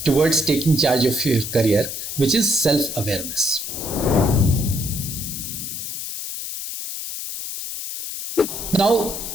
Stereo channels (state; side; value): noise; left; hiss, 6 dB below the sound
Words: towards taking charge of your career, which is self-awareness. Now,